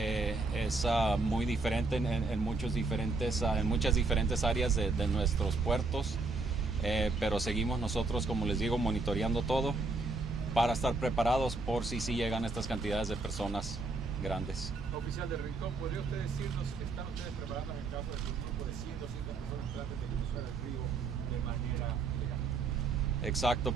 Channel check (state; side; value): quieter; left; 3.7 dB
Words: muy diferente en muchas diferentes áreas de nuestros puertos, pero seguimos nosotros, como les digo, monitoreando todo para estar preparados por si llegan estas cantidades de personas grandes. Oficial del Rincón, ¿podría usted decirnos que están ustedes preparando en caso de que un grupo de 100 o 200 personas traten de cruzar el río de manera legal? Exacto,